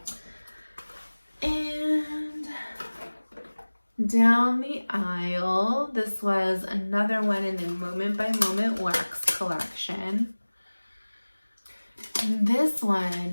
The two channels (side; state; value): both; inverted; correlation -1.00